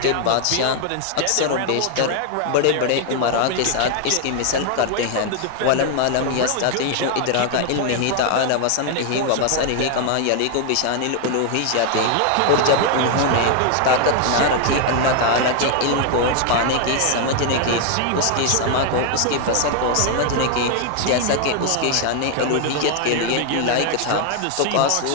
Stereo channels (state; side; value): different; both; correlation 0.00